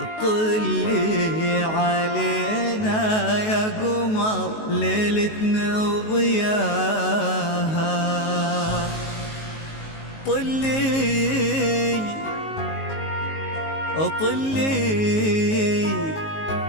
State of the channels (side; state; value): right; late; 19 ms